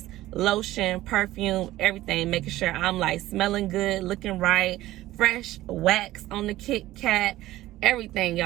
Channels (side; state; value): left; quieter; 16.0 dB